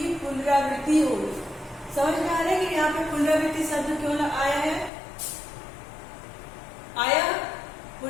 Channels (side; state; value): right; drops out; at 4.9 s